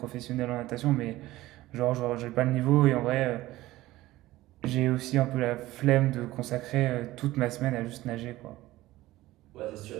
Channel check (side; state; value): left; quieter; 17.1 dB